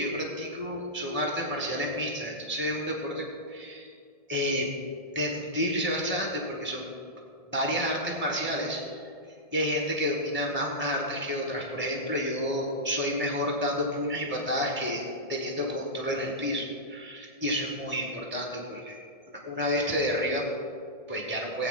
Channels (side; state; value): left; late; 1.7 ms